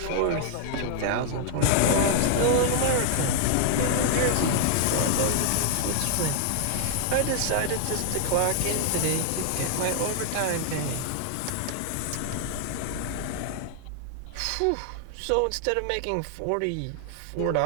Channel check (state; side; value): different; both; correlation 0.00